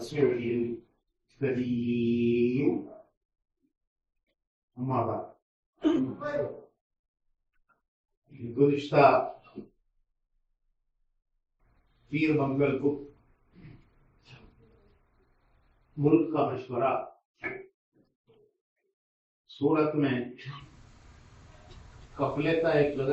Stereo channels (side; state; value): both; identical; correlation 1.00